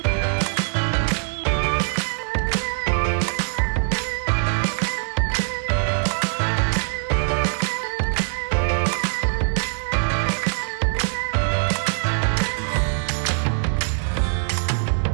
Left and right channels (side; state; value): left; silent; digital silence